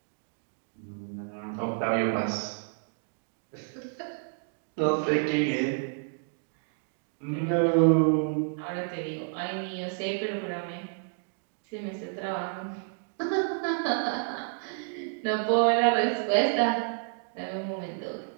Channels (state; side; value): silent; left; 58 dB below the other